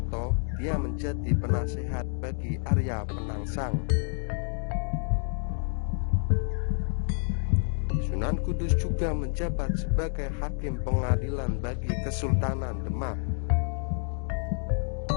dia menjadi penasehat bagi Arya Penangsang. Sunan Kudus juga menjabat sebagai hakim pengadilan bagi Kesultanan Demak.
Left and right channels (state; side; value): silent; right; 59 dB below the other